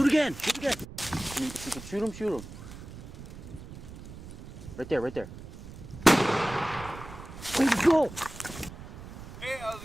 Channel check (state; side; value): noise; right; rumble, 14 dB below the sound